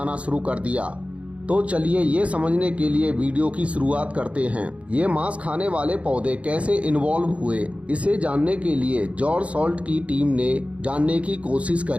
शुरू कर दिया। तो चलिए ये समझने के लिए वीडियो की शुरुआत करते हैं। ये मांस खाने वाले पौधे कैसे इन्वॉल्व हुए, इसे जानने के लिए जॉर्ज सॉल्ट की टीम ने जानने की कोशिश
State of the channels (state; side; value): late; left; 0.064 ms